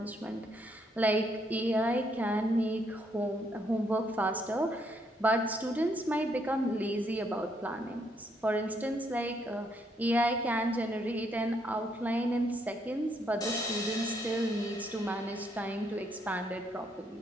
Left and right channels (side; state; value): both; normal; correlation 0.73